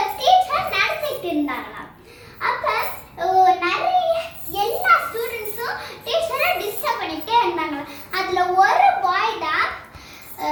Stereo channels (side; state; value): both; identical; correlation 1.00